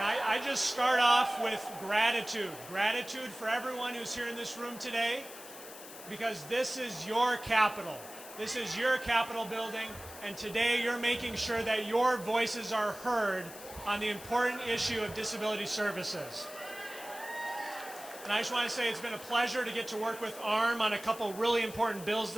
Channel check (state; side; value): noise; left; hiss, 15 dB below the sound